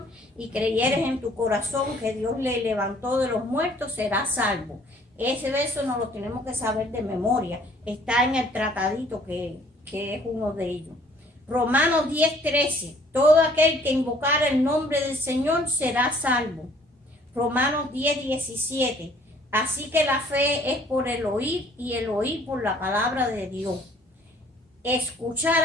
y creyeres en tu corazón que Dios le levantó de los muertos, serás salvo. Ese verso no lo tenemos que saber de memoria, está en el tratadito que es uno de ellos. Romanos 10:13, todo aquel que invocara el nombre del Señor será salvo. Romanos 10:17, así que la fe es por el oír y el oír por la palabra de Dios. Escuchar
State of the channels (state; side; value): normal; both; correlation 0.58